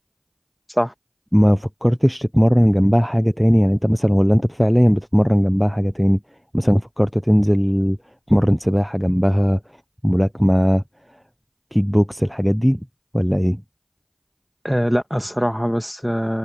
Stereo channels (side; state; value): both; identical; correlation 1.00